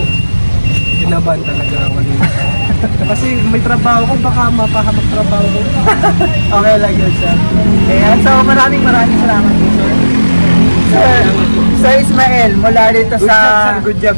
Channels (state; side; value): inverted; both; correlation -1.00